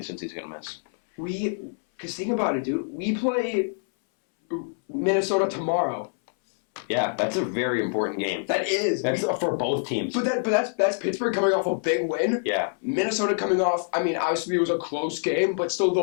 Cincy's going to miss. Because think about it, dude. We play Minnesota tomorrow. Yeah, that's a very important game. That is. That's for both teams. But that's Pittsburgh coming off a big win. Yeah. Minnesota coming off. I mean, obviously it was a close game, but still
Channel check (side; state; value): right; silent; 61 dB below the other